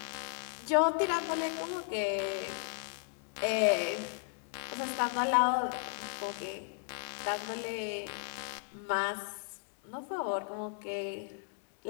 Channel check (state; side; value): silent; right; 54 dB below the other